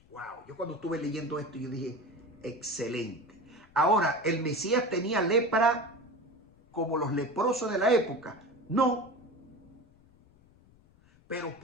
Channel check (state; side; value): noise; left; rumble, 28 dB below the sound